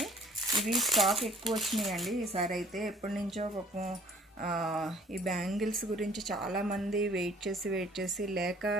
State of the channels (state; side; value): normal; both; correlation 0.54